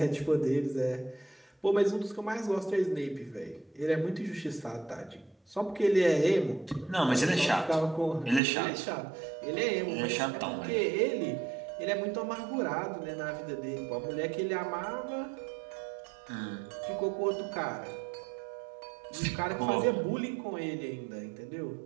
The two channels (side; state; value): left; drops out; at 8.4 s